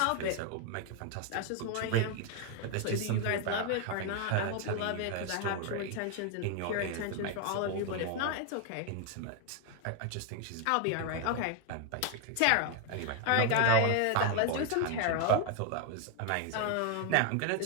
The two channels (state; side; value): different; both; correlation 0.00